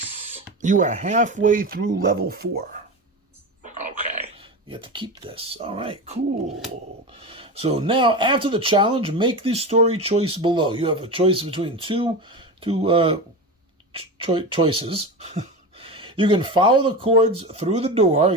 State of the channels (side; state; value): both; normal; correlation 0.24